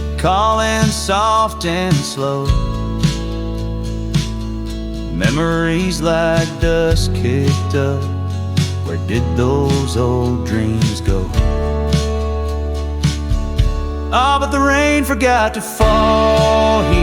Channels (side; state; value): both; identical; correlation 1.00